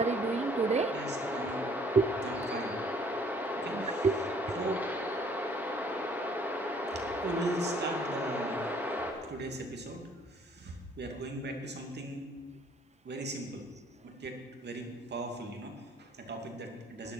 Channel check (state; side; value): normal; both; correlation 0.60